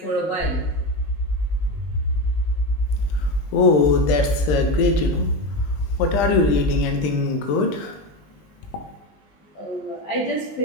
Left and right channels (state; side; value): late; right; 20 ms